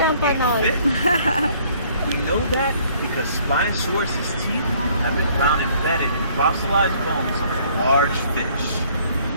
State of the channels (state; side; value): inverted; both; correlation -0.60